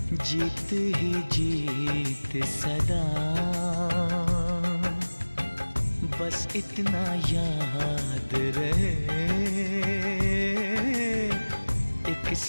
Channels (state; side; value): inverted; both; correlation -1.00